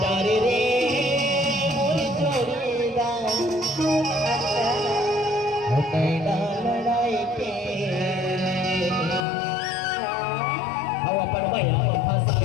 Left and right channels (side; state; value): right; drops out; at 9.2 s